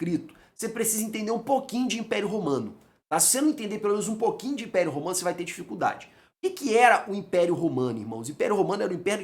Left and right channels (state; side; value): identical; both; correlation 1.00